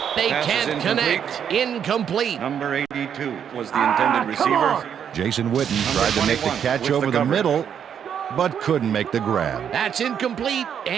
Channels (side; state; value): left; quieter; 8.3 dB